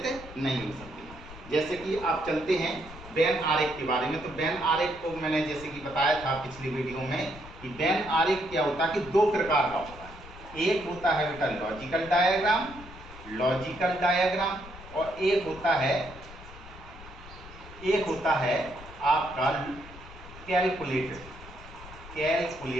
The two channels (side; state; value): left; noise; rumble, 16 dB below the sound